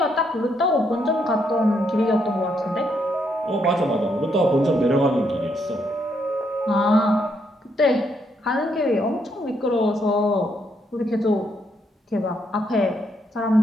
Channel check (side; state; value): both; normal; correlation 0.75